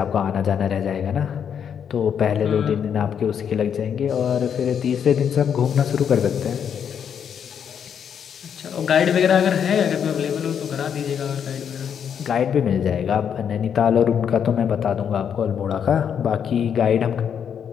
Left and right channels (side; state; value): right; quieter; 8.0 dB